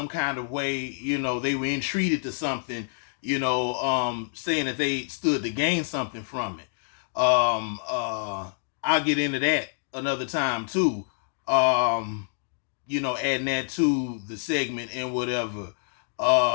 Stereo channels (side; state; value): right; silent; digital silence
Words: kind of way, they were entreated to something, saying that they stood to gain something from it. I'll get into that another time too. Adding that to the segment and whatever.